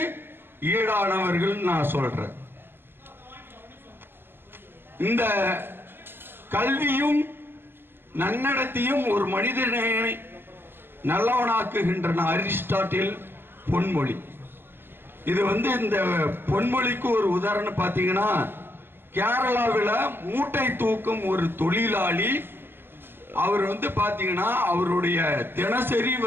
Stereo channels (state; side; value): late; left; 0.10 ms